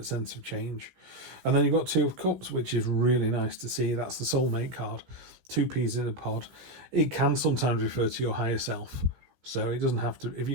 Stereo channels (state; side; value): late; left; 16 ms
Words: sense of change. And then you've got 2 of Cups, which is really nice to see. That's the soulmate card. 2 peas in a pod. It can sometimes refer to your higher self. So it doesn't have to, if